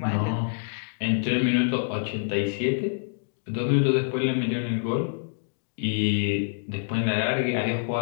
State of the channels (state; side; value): silent; right; digital silence